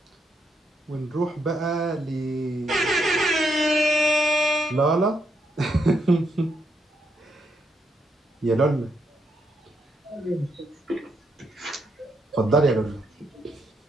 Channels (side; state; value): both; normal; correlation 0.78